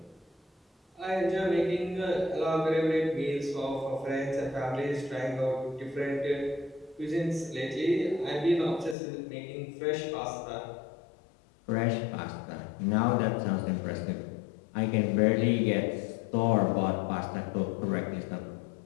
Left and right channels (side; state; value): right; drops out; at 9.0 s